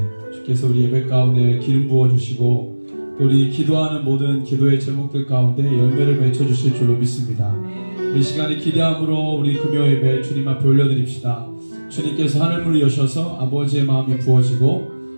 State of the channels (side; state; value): both; inverted; correlation -1.00